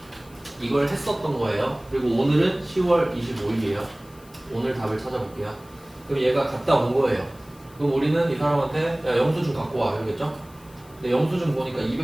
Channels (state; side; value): noise; left; hiss, 26 dB below the sound